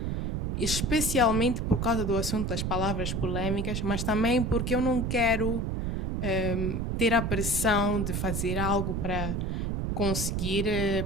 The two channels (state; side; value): noise; right; rumble, 1 dB below the sound